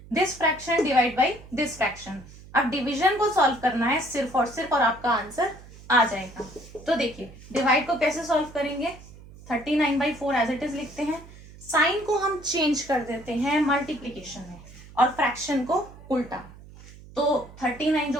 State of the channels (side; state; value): right; noise; hum, 19 dB below the sound